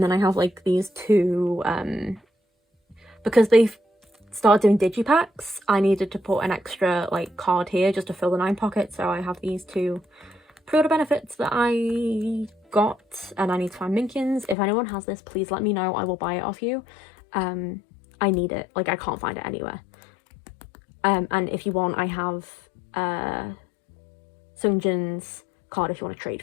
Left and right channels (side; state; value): right; drops out; at 14.6 s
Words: then I have like these 2, because they've started doing digipacks, I needed to put an extra like card here just to fill the 9 pockets. So I have these 2 pre-order benefits that I got, and I need to find Minkyun's. If anyone has this, please let me know. I will buy it off you. I need it. Like I can't find it anywhere. And if you want, I have Sungjin's card if you want to trade